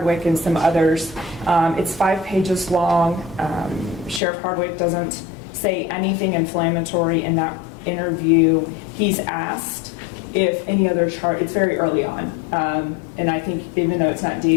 and some others. It's 5 pages long. Sheriff Hardwick doesn't say anything inflammatory in that interview. He's asked if any other charge, it's very early on. And I think even though it's not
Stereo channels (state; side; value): drops out; right; at 4.2 s